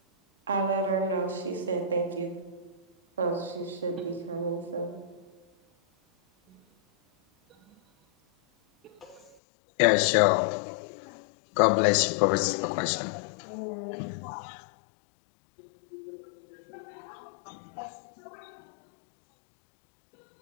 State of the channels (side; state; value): right; drops out; at 9.3 s